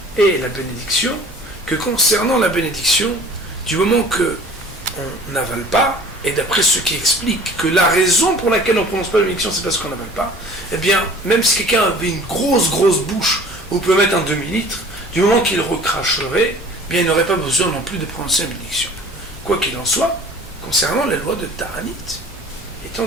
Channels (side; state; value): both; normal; correlation 0.47